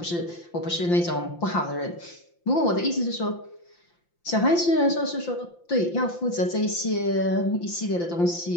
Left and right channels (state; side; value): late; right; 5.8 ms